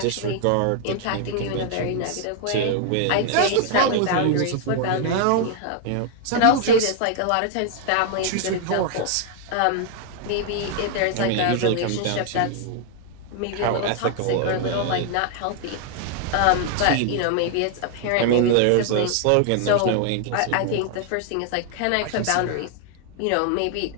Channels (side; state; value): both; different; correlation 0.00